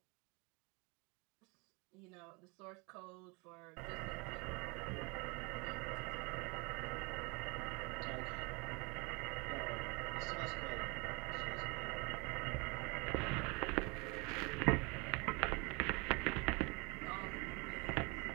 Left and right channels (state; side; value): quieter; left; 28.7 dB